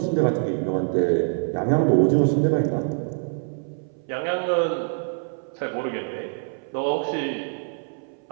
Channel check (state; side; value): silent; left; 59 dB below the other